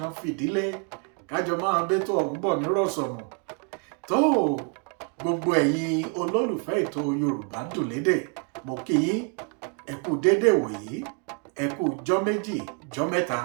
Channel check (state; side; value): quieter; left; 38.8 dB